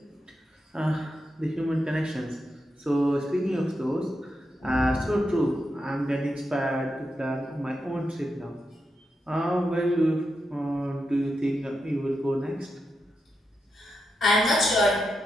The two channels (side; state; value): both; normal; correlation 0.86